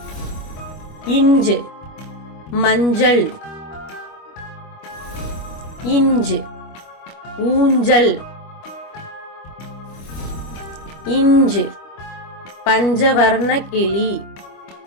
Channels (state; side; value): late; right; 25 ms